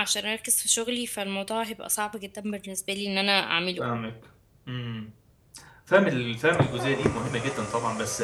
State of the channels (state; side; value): identical; both; correlation 1.00